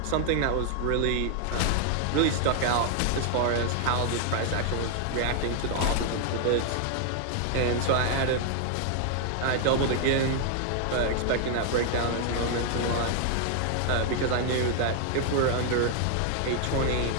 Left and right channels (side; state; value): both; different; correlation 0.00